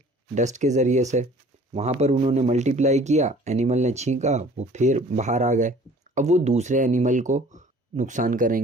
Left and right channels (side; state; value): both; normal; correlation 0.51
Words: डस्ट के ज़रिए से, वहाँ पर उन्होंने मल्टीप्लाई किया, एनिमल ने छींका, वो फिर बाहर आ गए, अब वो दूसरे एनिमल को नुकसान